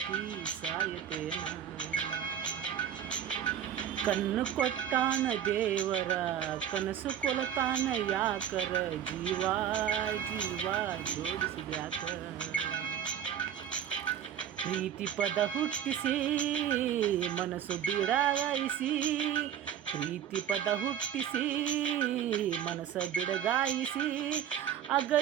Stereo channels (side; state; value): left; quieter; 9.7 dB